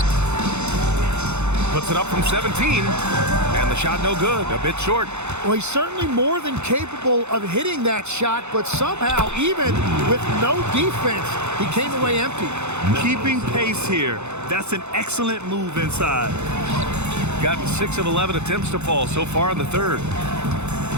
Puts it up from 17, and the shot no good, a bit short. Well, he's certainly more than capable of hitting that shot, but somehow, even with no defense, he came away empty. Keeping pace here. That's an excellent move inside. Gotten 6 of 11 attempts to fall so far in the third.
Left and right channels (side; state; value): left; late; 0.82 ms